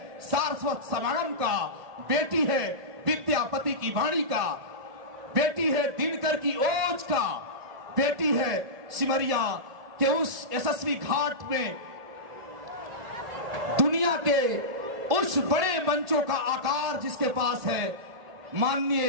सारस्वत समागम का, बेटी है विद्यापति की वाणी का, बेटी है दिनकर की ओज का, बेटी है सिमरिया के उस यशस्वी घाट में दुनिया के उस बड़े मंचों का आकार जिसके पास है।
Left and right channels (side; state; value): left; late; 1.5 ms